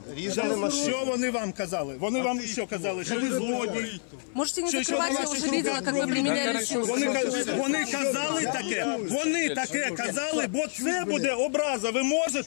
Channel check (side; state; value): right; silent; 57 dB below the other